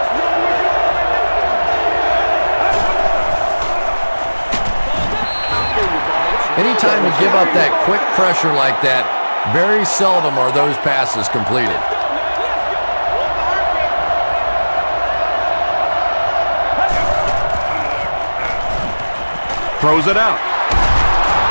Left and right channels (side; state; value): both; inverted; correlation -1.00